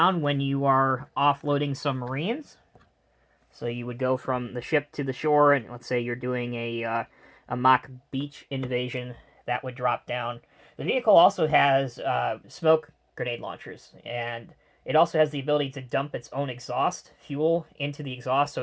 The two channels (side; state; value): both; identical; correlation 1.00